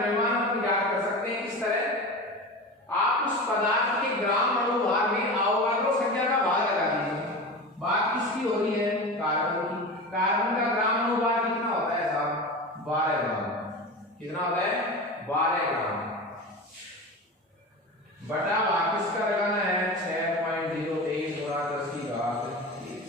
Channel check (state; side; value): normal; both; correlation 0.28